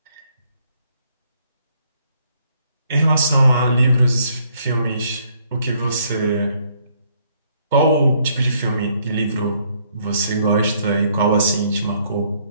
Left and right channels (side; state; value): both; inverted; correlation -0.68